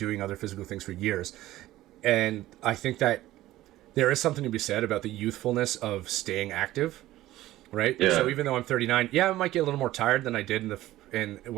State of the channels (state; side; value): quieter; left; 15.6 dB